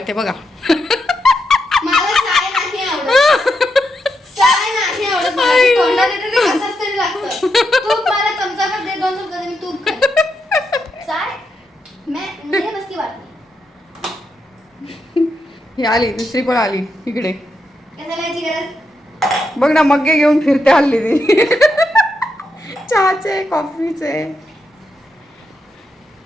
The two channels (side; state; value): both; normal; correlation 0.83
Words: बघा. मला साय नाही आवडत. साय नाही आवडत मला. ते तोंडात येतं ते कसंच तरी लागतं. तूप मला चमचाभर दे. 2 चमचा दे. मी तूप खाईन. साय मुझे बस की बात नहीं. ही आली दुसरी पण आली इकडे. कशाला याची गरज? बघ ना मग्गे घेऊन फिरते हल्ली ती. चहाचे कॉफीचे.